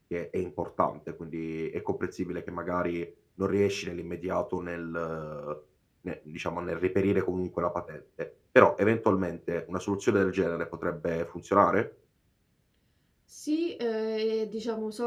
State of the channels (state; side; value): identical; both; correlation 1.00